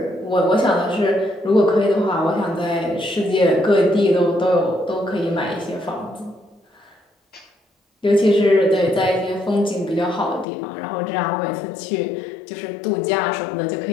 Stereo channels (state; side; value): drops out; right; at 10.5 s